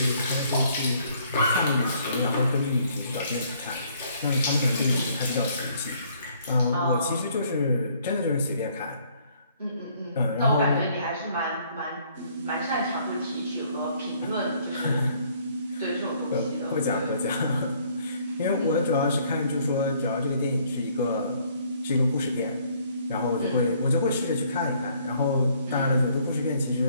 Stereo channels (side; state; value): both; inverted; correlation -0.64